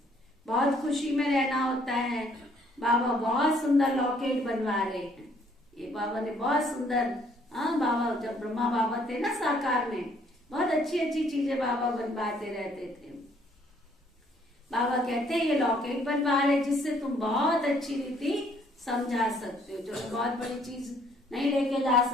बहुत खुशी में रहना होता है। बाबा बहुत सुंदर लॉकेट बनवा रहे हैं। ये बाबा ने बहुत सुंदर, हाँ बाबा जब ब्रह्मा बाबा थे ना साकार में, बहुत अच्छी अच्छी चीजें बाबा बनवाते रहते थे। बाबा कहते हैं ये लॉकेट बनवा रहे जिससे तुम बहुत अच्छी रीति समझा सकते हो। जो बहुत बड़ी चीज नहीं लेके जा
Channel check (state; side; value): normal; both; correlation 0.64